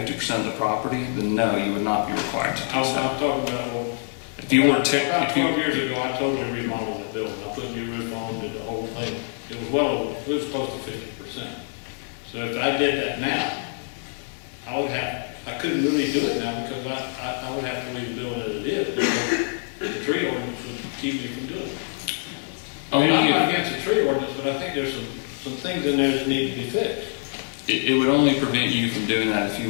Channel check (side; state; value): right; silent; 56 dB below the other